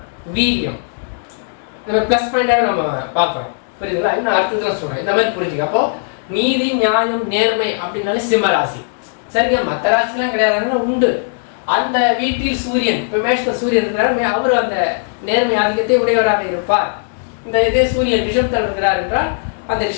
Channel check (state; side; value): silent; right; digital silence